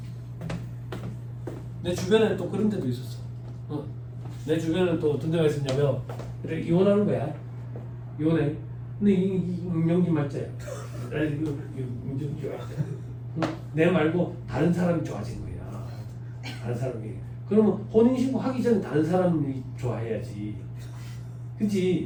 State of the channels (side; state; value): both; identical; correlation 1.00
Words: 내 주변에는 또 그런 데도 있었어. 내 주변에는 또 어떤 데가 있었냐면 그래 이혼하는 거야. 이혼해. 근데 이 임명진 말자야. 내 말고 다른 사람이 좋아진 거야. 다른 사람이. 그러면 혼인신고 하기 전에 다른 사람이 좋아해야지.